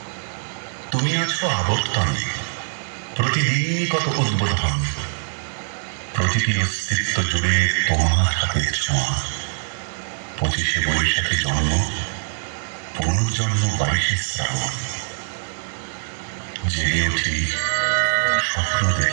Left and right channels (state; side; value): silent; left; digital silence